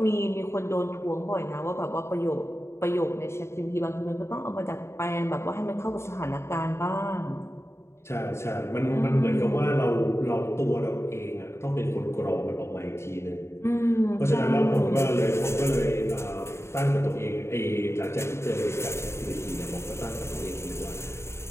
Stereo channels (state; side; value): late; right; 0.13 ms